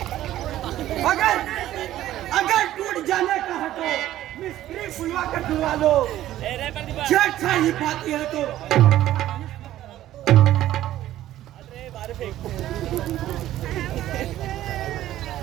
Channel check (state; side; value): quieter; left; 13.6 dB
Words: अगर टूट जाने का है तो मिस्त्री बुलवा कर डुबा लो, छेड़छाड़ी पाती है तो